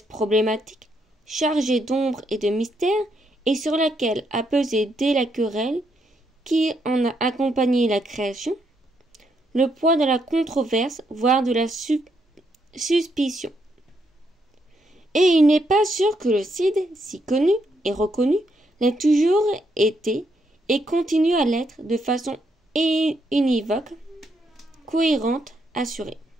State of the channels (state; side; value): normal; both; correlation 0.77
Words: problématique, chargée d'ombre et de mystère, et sur laquelle a pesé dès la querelle qui en a accompagné la création, le poids de la controverse, voire de la suspicion. Et il n'est pas sûr que le Cid, si connu et reconnu, l'ait toujours été et continue à l'être de façon univoque, cohérente, assurée.